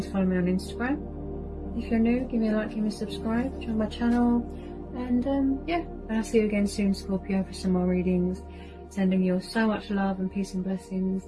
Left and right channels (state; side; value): identical; both; correlation 1.00